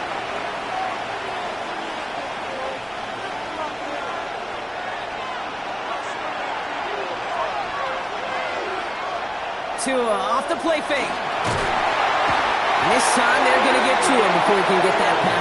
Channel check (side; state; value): both; identical; correlation 1.00